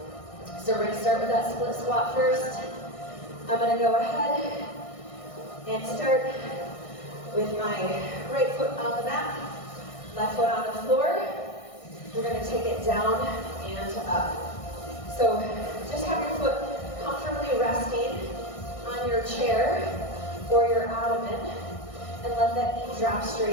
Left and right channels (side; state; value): right; late; 1.6 ms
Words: So we're gonna start with that split squat first. I'm gonna go ahead and start with my right foot on the mat, left foot on the floor. We're gonna take it down and up. So just have your foot comfortably resting on your chair or your ottoman, and let that knee drop